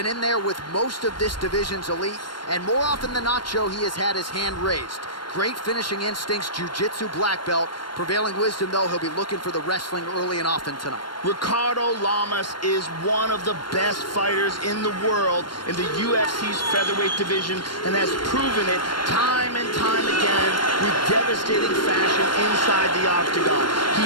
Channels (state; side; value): late; right; 0.72 ms